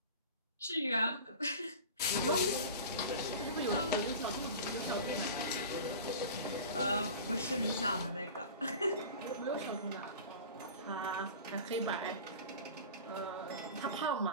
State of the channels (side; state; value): both; inverted; correlation -0.36